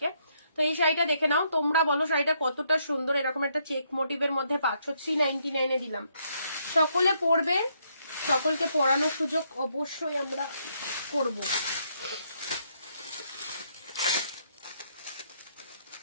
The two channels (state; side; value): inverted; both; correlation -0.74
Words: তো এই শাড়িটা দেখে নাও, তোমরা বলো শাড়িটা কতটা সুন্দর। এরকম একটা চেক মোটিভের মধ্যে পাচ্ছ, 399 এ দিলাম। সকলে পরবে, সকলকে পরানোর সুযোগ অবশ্যই আমরা করব।